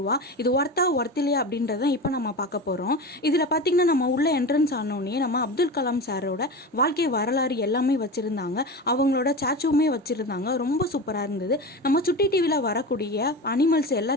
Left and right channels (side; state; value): both; normal; correlation 0.27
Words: ரூபா. இது ஒர்த்தில்லையா அப்படின்றத இப்போ நம்ம பார்க்க போகிறோம். இதில் பார்த்தீங்கன்னா நம்ம உள்ள என்ட்ரன்ஸ் ஆனோடனே நம்ம அப்துல் கலாம் சாரோட வாழ்க்கை வரலாறு எல்லாமே வச்சுருந்தாங்க. அவங்களோட ஸ்டாச்சுவுமே வச்சுருந்தாங்க. ரொம்ப சூப்பராக இருந்தது. நம்ம சுட்டி டிவியில் வரக்கூடிய அனிமல்ஸ்